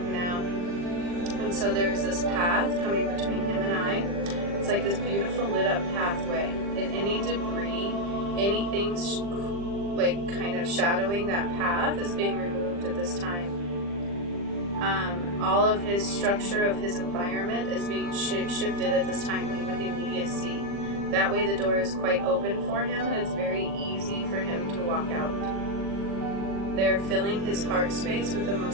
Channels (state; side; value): late; left; 40 ms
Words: now. And so there's this path coming between him and I. It's like this beautiful lit up pathway. And any debris, anything like kind of shadowing that path is being removed at this time. All of his structure of his environment is being shifted at this time with immediacy. That way the door is quite open for him, and it's very easy for him to walk out. They're filling his heart space with the